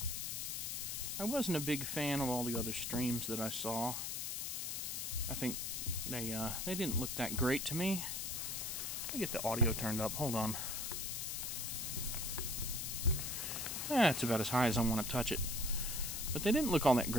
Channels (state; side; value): noise; left; hiss, 3 dB below the sound